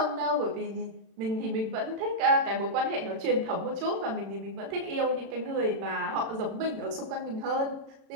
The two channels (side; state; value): left; late; 36 ms